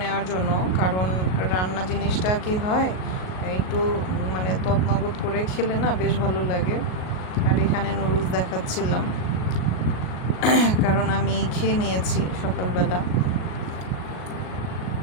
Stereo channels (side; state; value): right; late; 38 ms